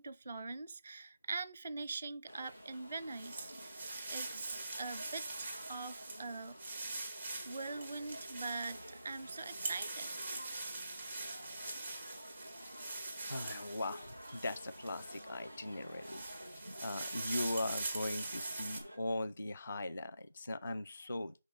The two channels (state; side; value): inverted; both; correlation -0.86